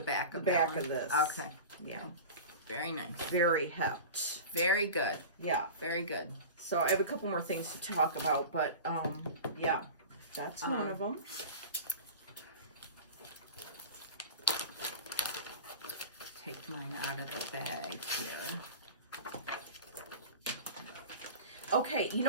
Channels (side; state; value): both; inverted; correlation -0.33